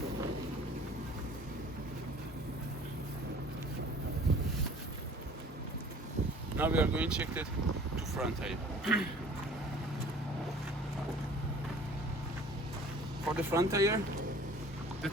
Now we are going to check the 2 front tire. For the front tire, the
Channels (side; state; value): both; normal; correlation 0.49